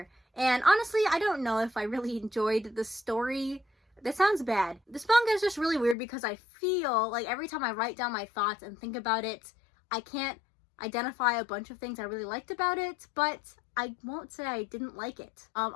And honestly, I don't know if I really enjoyed the story. That sounds bad. This manga is just really weird because I feel like every time I write down my thoughts and think about it, I can't identify a bunch of things I really liked about it, but I won't say I didn't like it.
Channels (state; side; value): drops out; right; at 6.0 s